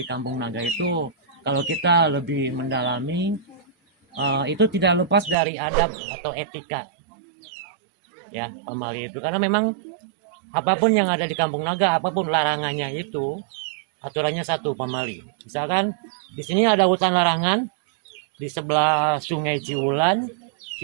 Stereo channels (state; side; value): drops out; left; at 5.4 s